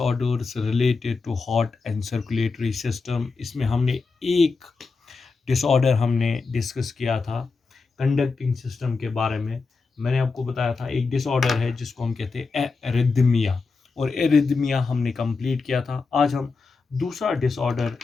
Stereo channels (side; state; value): right; quieter; 4.4 dB